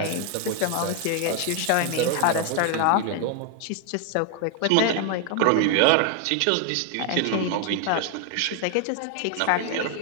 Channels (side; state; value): both; different; correlation 0.00